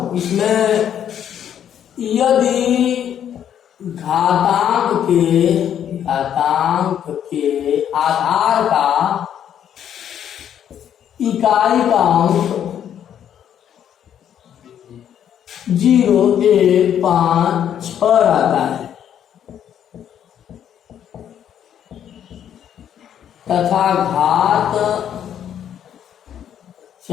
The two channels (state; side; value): quieter; right; 9.6 dB